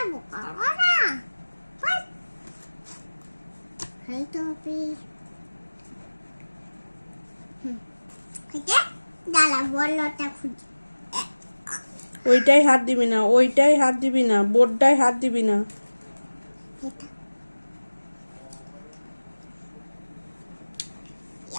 করবো না হয়তো হবে। দাঁড়া বলটা খুঁজি। ওইটাই হাত দিবি না, ওইটাই হাত দিবি না, বোর্ডটাই হাত দিবি না। এটা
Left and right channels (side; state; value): both; inverted; correlation -1.00